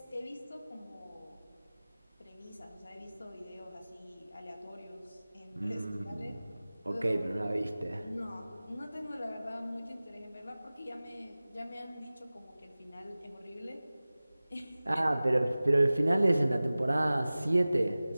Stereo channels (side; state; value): both; inverted; correlation -0.98